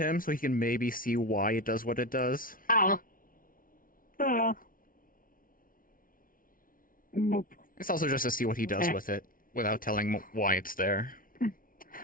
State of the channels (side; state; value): right; late; 0.40 ms